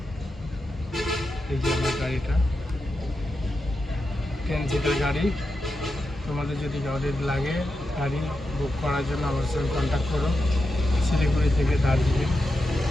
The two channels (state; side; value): normal; both; correlation 0.88